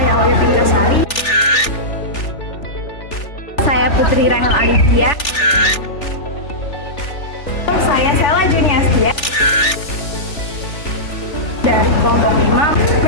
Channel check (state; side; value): late; right; 3.4 ms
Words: Oya Pinkasari. Saya Putri Rahel Alivia. Saya Sela Juniastia. Dari kelompok 5,